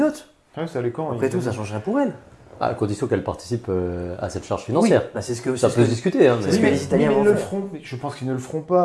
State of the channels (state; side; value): identical; both; correlation 1.00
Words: Après tout, ça changerait pour elle. À condition qu'elle participe à cette charge financière. Oui, ça peut se discuter. Hein, mais les Italiens ils le feront. Je pense qu'ils ne le feront